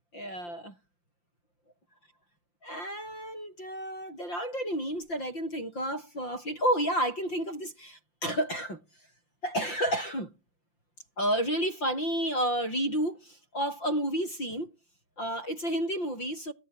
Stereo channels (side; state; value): right; late; 5.8 ms